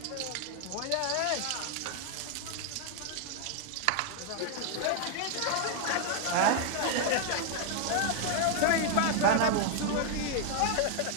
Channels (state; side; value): different; both; correlation 0.00